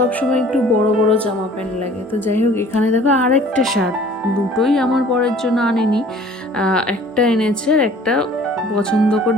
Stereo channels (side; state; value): both; normal; correlation 0.51